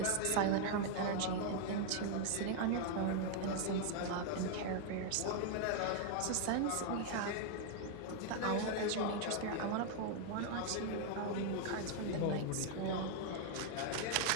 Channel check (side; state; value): both; different; correlation 0.00